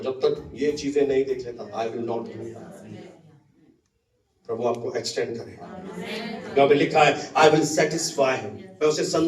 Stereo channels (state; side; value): identical; both; correlation 1.00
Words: जब तक ये चीजें नहीं देख लेता, आई विल नॉट। प्रभु आपको एक्सटेंड करेगा। यहाँ पे लिखा है, आई विल सेटिस्फाई हिम, मैं उसे